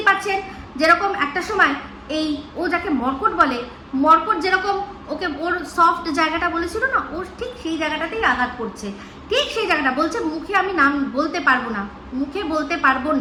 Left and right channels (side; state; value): both; identical; correlation 1.00